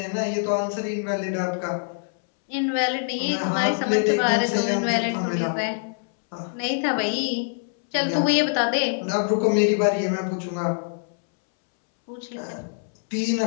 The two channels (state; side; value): silent; right; 62 dB below the other